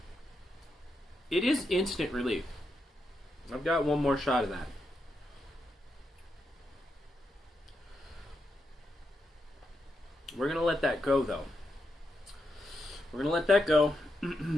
it is instant relief. I've got one more shot of that. We're gonna let that go, though. We're gonna let that go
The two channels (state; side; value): normal; both; correlation 0.84